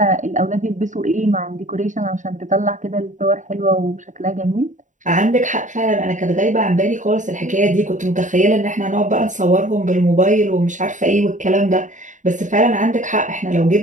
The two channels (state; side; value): late; left; 0.36 ms